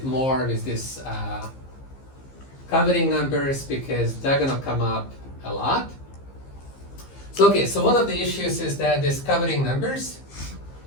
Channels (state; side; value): late; right; 15 ms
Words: more with this covering numbers, because they're gonna come up a lot. So okay, so one of the issues is that these covering numbers